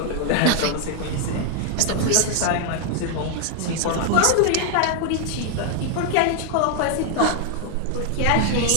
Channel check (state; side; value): different; both; correlation 0.00